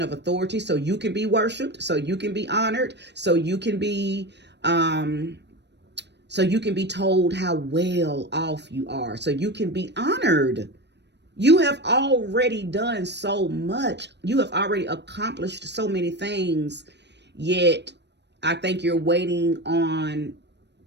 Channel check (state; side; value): late; left; 0.50 ms